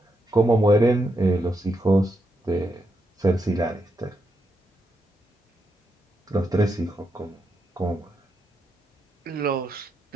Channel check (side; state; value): both; normal; correlation 0.82